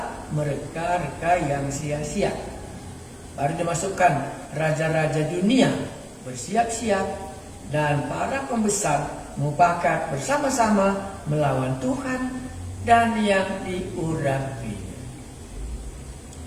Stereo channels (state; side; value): identical; both; correlation 1.00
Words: mereka-reka yang sia-sia? Baru dimasukkan raja-raja dunia bersiap-siap dan para pembesar mufakat bersama-sama melawan Tuhan dan yang diurapi.